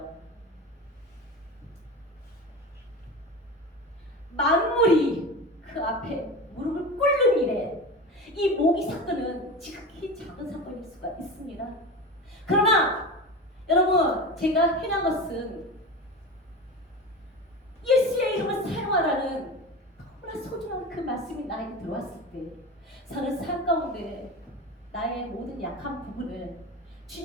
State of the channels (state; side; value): normal; both; correlation 0.28